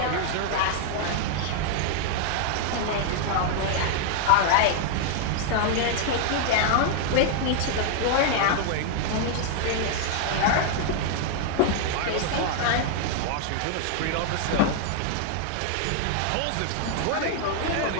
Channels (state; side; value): different; both; correlation 0.00